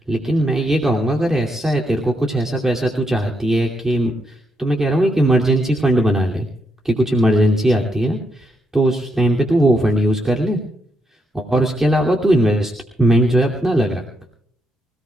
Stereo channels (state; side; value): normal; both; correlation 0.79